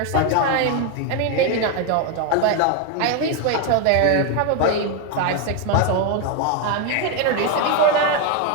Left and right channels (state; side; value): different; both; correlation 0.02